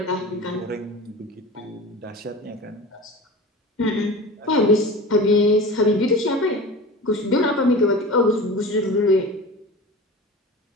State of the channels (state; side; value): normal; both; correlation 0.34